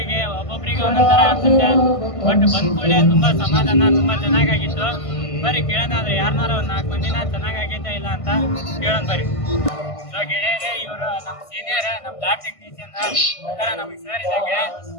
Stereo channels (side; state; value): right; late; 1.5 ms